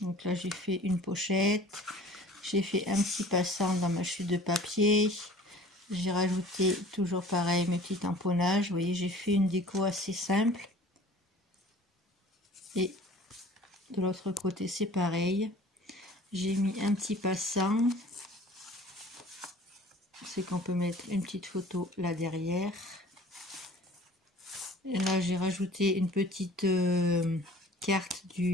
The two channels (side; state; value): both; normal; correlation 0.48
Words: Donc là, j'ai fait une pochette. J'ai fait un petit passant dans ma chute de papier. J'ai rajouté toujours pareil mes petits tamponnages. Vous voyez, j'ai fait une déco assez simple. Et de l'autre côté, c'est pareil. J'ai mis un petit passant. C'est qu'on peut mettre une petite photo là derrière. Et là, j'ai rajouté une petite carte